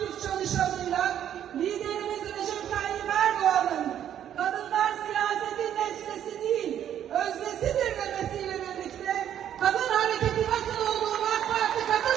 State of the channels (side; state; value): left; quieter; 10.2 dB